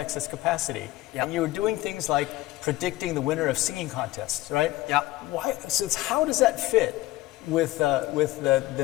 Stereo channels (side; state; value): right; quieter; 17.6 dB